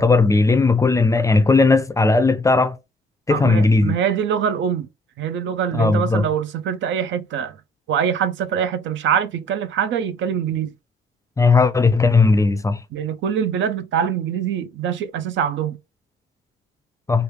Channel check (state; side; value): normal; both; correlation 0.60